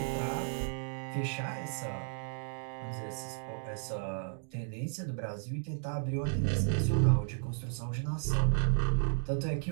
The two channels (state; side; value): silent; left; digital silence